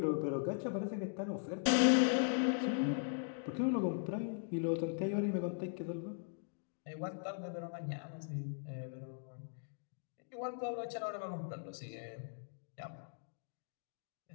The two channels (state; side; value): silent; right; digital silence